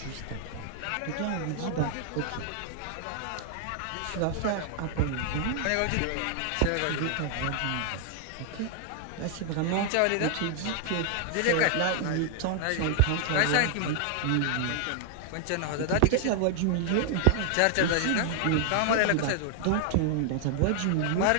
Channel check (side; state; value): both; different; correlation 0.00